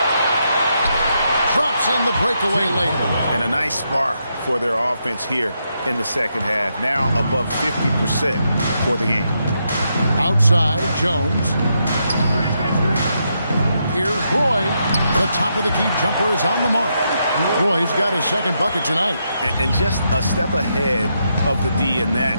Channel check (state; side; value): inverted; both; correlation -0.81